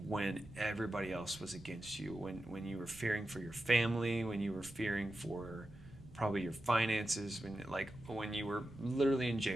everybody else was against you, when you were fearing for your family, when you were fearing for probably your finances, when you were literally in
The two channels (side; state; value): right; noise; rumble, 19 dB below the sound